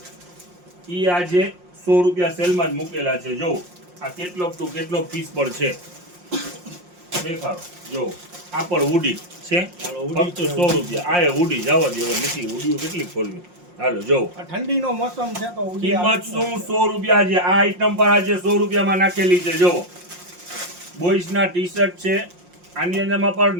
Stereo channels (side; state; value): left; late; 5.6 ms